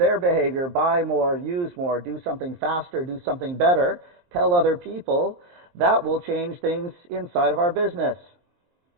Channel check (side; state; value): left; late; 23 ms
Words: behavior, buy more, use more, do something faster, do something better, tell other people, that will change things inside of our business.